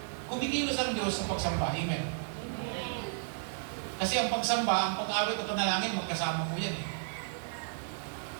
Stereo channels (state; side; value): silent; left; digital silence